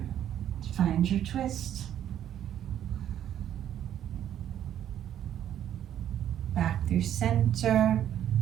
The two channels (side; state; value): left; quieter; 10.7 dB